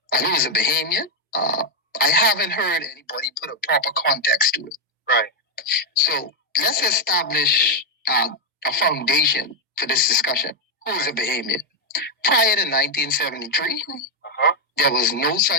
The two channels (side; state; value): both; normal; correlation 0.02